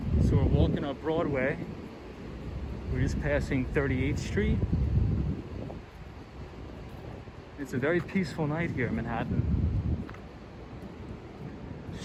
So we're walking up Broadway. We're just passing 38th Street. It's a very peaceful night here in Manhattan. The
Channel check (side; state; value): both; identical; correlation 1.00